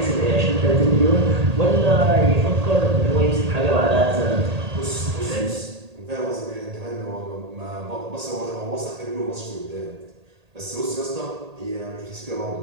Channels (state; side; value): late; left; 1.8 ms